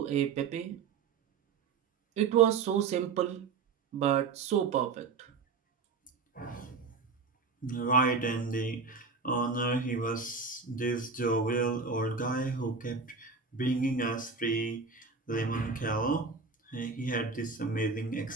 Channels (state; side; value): quieter; left; 4.9 dB